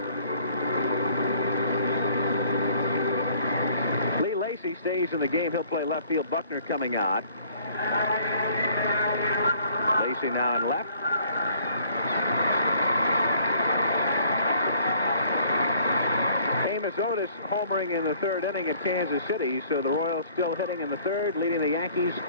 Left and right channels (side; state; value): both; inverted; correlation -0.58